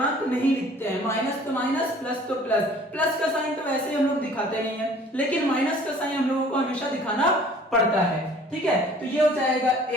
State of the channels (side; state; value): both; normal; correlation 0.52